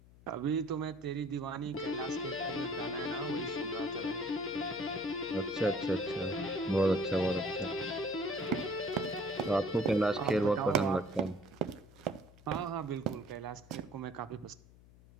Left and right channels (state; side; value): noise; left; hum, 23 dB below the sound